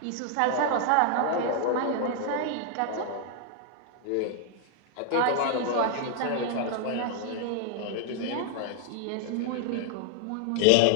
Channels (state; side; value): different; both; correlation 0.00